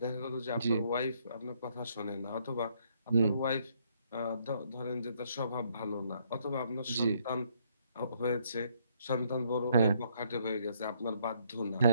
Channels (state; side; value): inverted; both; correlation -0.70